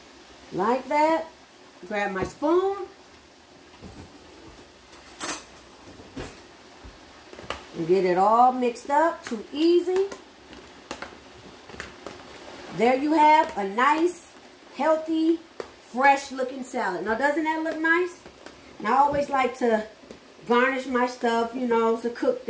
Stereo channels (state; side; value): identical; both; correlation 1.00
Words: Like that. Grab my spoon. And get it all mixed up. Too easy. There you have a nice, healthy, fresh looking salad. Now doesn't that look nice? And I always like to garnish my stuff, you know, it's a cook